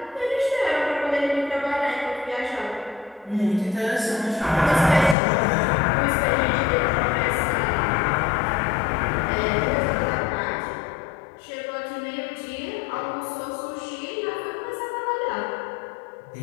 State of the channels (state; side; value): drops out; right; at 5.2 s